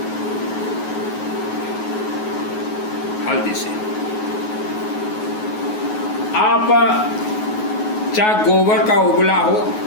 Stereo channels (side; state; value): right; late; 9.4 ms